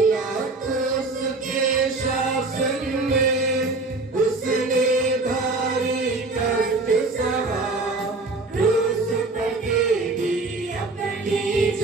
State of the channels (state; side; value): quieter; left; 3.4 dB